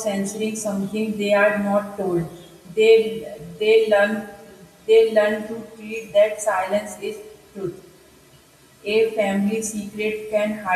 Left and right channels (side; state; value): both; identical; correlation 1.00